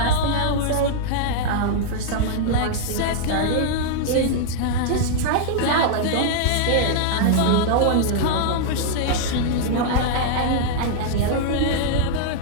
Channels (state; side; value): different; both; correlation -0.01